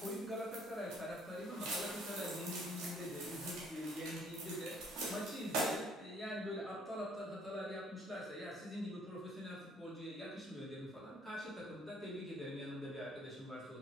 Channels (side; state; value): both; normal; correlation 0.62